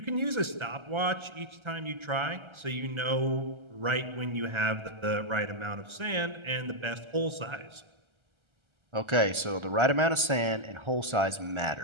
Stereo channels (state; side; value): late; left; 1.3 ms